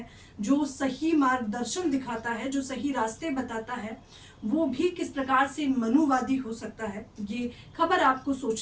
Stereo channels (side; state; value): both; identical; correlation 1.00